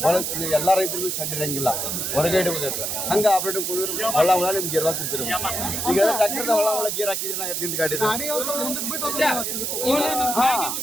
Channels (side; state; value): right; noise; hiss, 2 dB below the sound